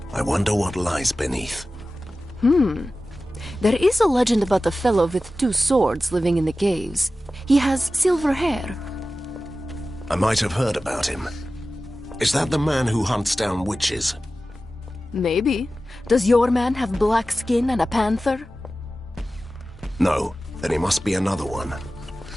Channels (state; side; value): normal; both; correlation 0.95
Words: I wonder what lies beneath. There is a legend about a fellow with 2 swords living in the caves. He has silver hair. I might have heard about him. Is that the man who hunts down witches? Maybe. Does your man have black skin and a panther? No, then he must be another one.